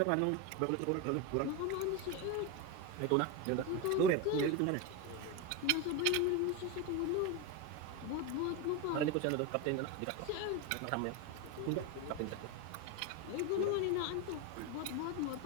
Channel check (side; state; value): both; different; correlation 0.03